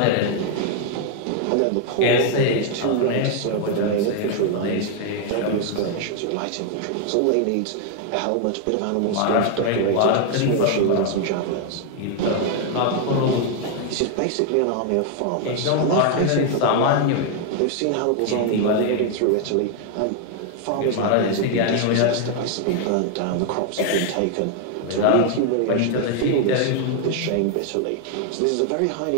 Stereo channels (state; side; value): different; both; correlation 0.01